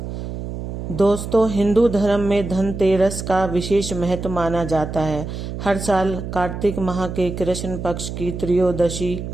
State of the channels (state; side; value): noise; right; hum, 7 dB below the sound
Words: दोस्तों, हिंदू धर्म में धनतेरस का विशेष महत्व माना जाता है। हर साल कार्तिक माह के कृष्ण पक्ष की त्रयोदशी